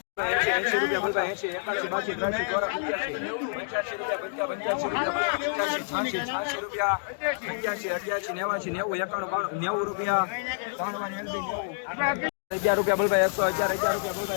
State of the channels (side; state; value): right; silent; digital silence